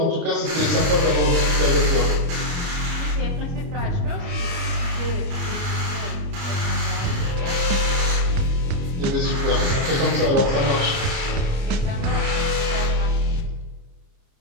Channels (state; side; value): late; left; 30 ms